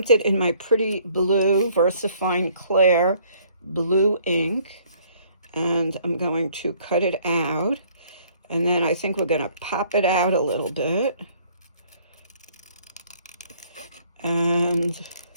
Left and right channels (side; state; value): both; inverted; correlation -0.61